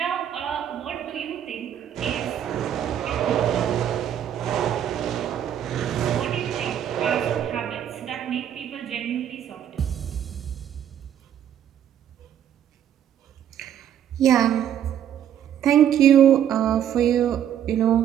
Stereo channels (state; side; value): quieter; left; 10.0 dB